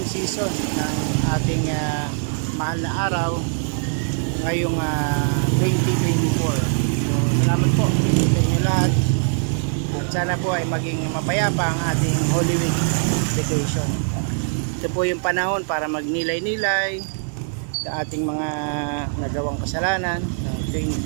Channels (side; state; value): left; silent; 64 dB below the other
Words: season ng ating mahal na araw ngayong 2024. So salamat po sa inyo lahat. At sana po ay maging mapayapa ang ating Holy Week vacation. Ito po yung panahon para magnilay-nilay sa ating mga nagawang kasalanan ng